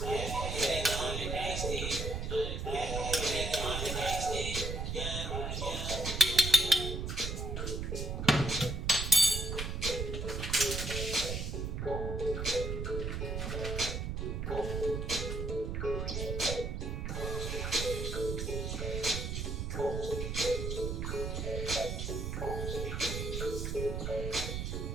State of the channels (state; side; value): noise; right; rumble, 3 dB below the sound